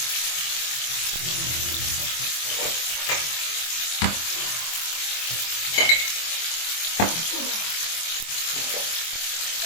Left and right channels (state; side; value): late; right; 24 ms